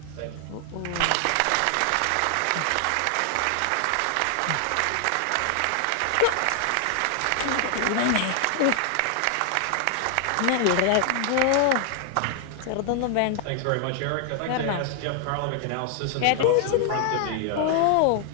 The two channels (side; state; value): both; different; correlation 0.00